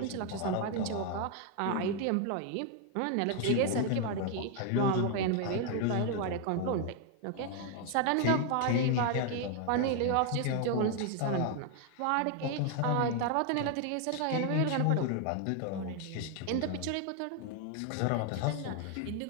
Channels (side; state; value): both; different; correlation 0.00